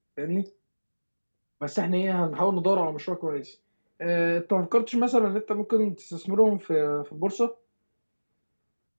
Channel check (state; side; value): inverted; both; correlation -1.00